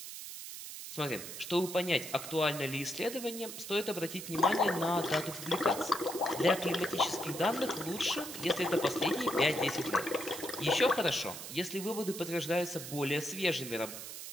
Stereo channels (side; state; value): right; noise; hiss, 9 dB below the sound